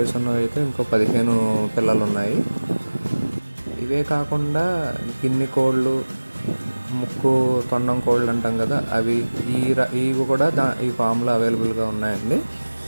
ఉన్నవి అయితే ఇంకో 15 పిల్లలు ఉన్నాయి. ఇవే కాకుండా గిన్నె కోళ్ళు, ముక్కు తొండం కోళ్ళు అంటాం కదా, అవి ఇవి కూడా ఈ ఫామ్లో అవైలబుల్గా ఉన్నాయండి.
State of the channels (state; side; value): inverted; both; correlation -1.00